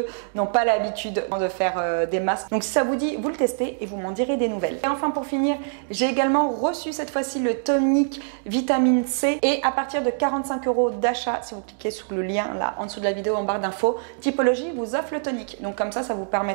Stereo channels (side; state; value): left; silent; digital silence